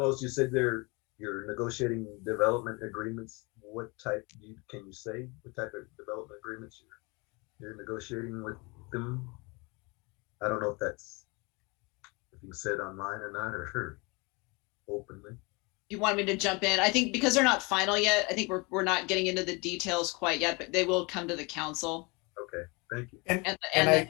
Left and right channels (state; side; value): quieter; right; 28.2 dB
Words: you said you're negotiating development agreements. What type can you say? What type of development agreements you're negotiating with them? I don't know if you said online or not, or openly. You want me to jump in? I think because they're not final yet, I think we're not getting into the details quite yet, but they will come to the council. Okay, thank you. And